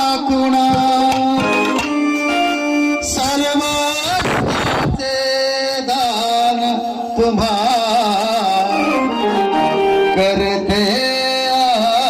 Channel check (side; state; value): both; identical; correlation 1.00